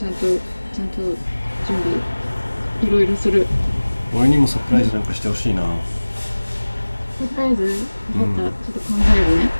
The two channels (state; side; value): inverted; both; correlation -1.00